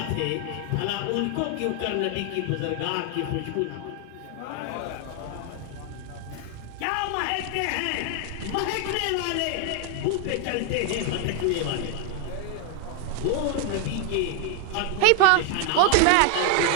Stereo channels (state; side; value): different; both; correlation 0.00